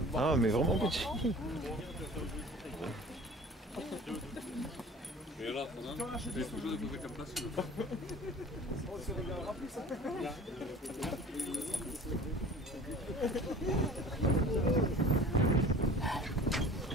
Ah, mais vraiment petits. Et là, je vais toujours découvrir comme place.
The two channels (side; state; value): both; normal; correlation 0.43